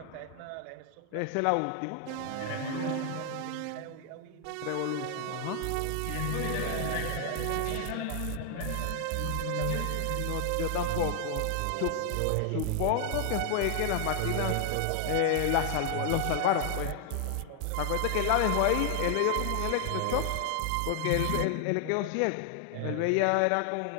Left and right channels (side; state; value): both; different; correlation 0.00